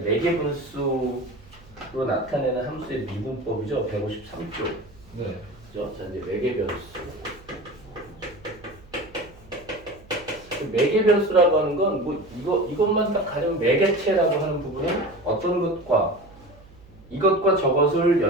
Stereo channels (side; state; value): right; noise; hum, 24 dB below the sound